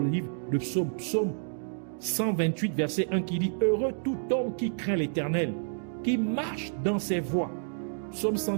livre de Psaume, Psaume 128, verset 1, qui dit « Heureux tout homme qui craint l'Éternel, qui marche dans ses voies. » Psaume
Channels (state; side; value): silent; left; digital silence